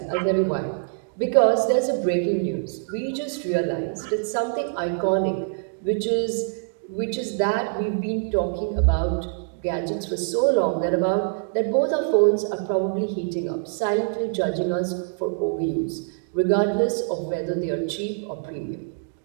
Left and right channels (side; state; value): left; silent; digital silence